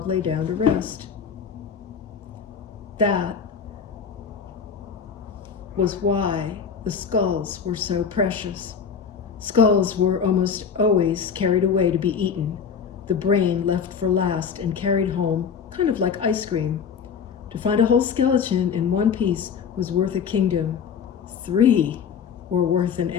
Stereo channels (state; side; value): quieter; right; 6.7 dB